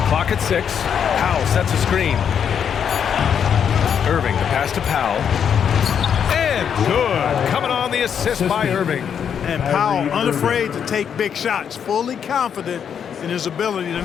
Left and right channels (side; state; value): right; quieter; 7.9 dB